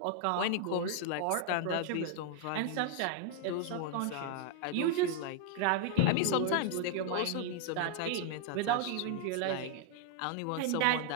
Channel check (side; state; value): both; different; correlation 0.00